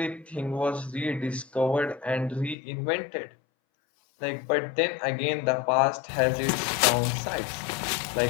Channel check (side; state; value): right; drops out; at 2.6 s